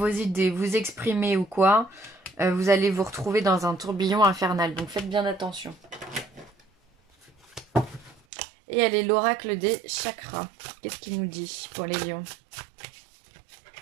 idées, vous exprimer ou quoi, vous allez vous retrouver dans un tourbillon infernal. Donc, faites bien attention. Et elle est l'oracle des chakras. Qu'est-ce qu'il nous dit pour les lions?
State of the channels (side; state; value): left; drops out; at 8.2 s